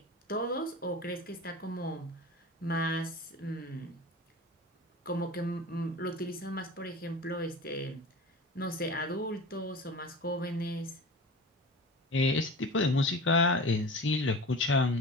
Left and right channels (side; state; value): both; normal; correlation 0.34